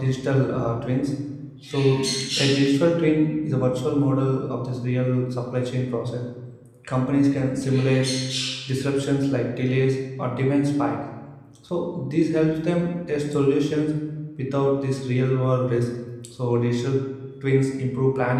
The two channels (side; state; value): both; identical; correlation 1.00